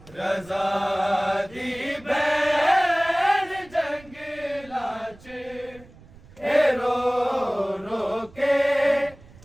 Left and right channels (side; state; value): right; noise; rumble, 23 dB below the sound